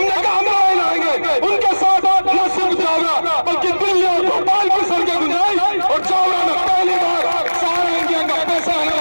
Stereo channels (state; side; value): inverted; both; correlation -1.00